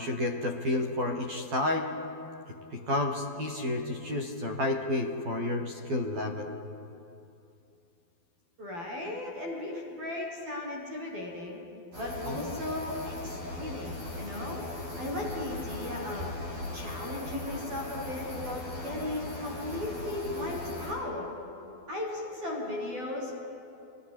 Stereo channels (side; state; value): left; late; 12 ms